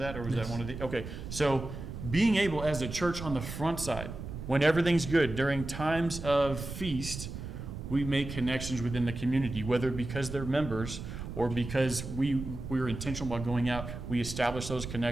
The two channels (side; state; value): right; noise; rumble, 8 dB below the sound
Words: or was that one of the? Okay, so being able as a church on the front side, when everything's good, during times of feast, we make connections within the community, whether because they're members or because we're intentional about going out. We establish those